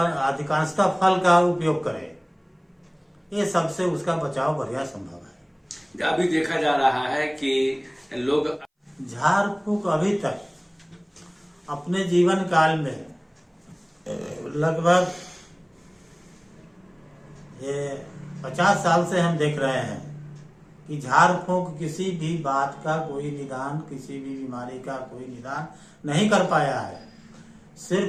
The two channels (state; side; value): identical; both; correlation 1.00